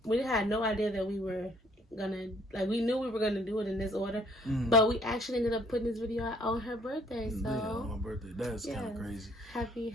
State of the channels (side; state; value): both; normal; correlation 0.62